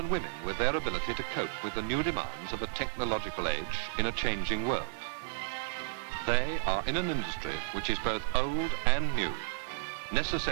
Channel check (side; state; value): left; silent; digital silence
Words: women with their ability to cope with the new demands of a technological age in a changing world. They are in an industry which is both old and new,